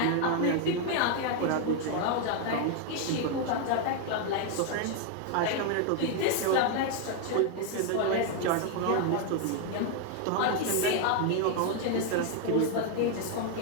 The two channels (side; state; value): both; different; correlation 0.00